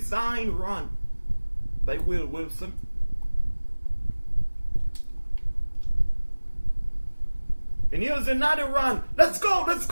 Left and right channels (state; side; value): inverted; both; correlation -1.00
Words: run by Will Wilson. And here's another run. Let's go, let's